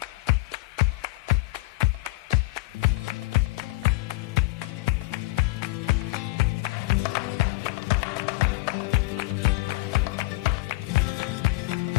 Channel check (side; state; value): right; quieter; 20.7 dB